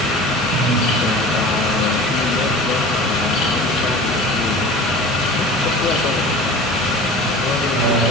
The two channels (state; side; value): normal; both; correlation 0.38